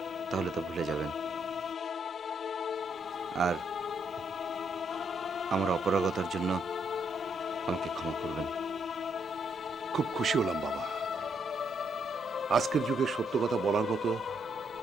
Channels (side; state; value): both; normal; correlation 0.74